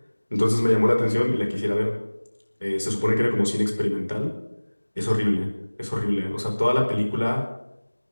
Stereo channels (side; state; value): both; inverted; correlation -1.00